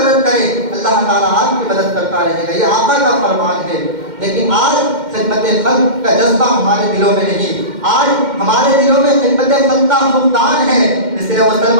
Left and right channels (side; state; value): left; late; 2.1 ms